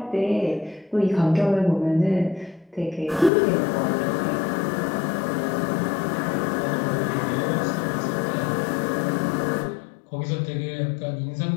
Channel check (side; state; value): right; drops out; at 3.3 s